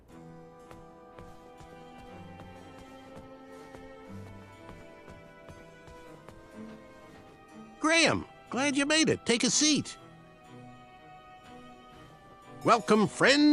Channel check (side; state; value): both; identical; correlation 1.00